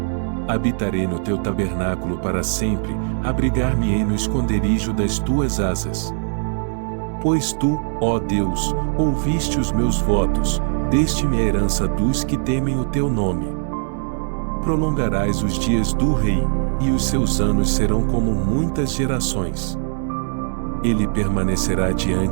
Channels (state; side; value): silent; left; digital silence